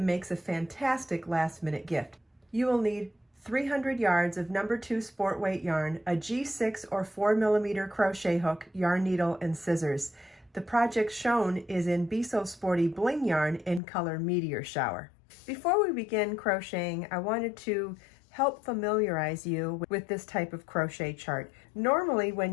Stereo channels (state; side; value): drops out; right; at 13.8 s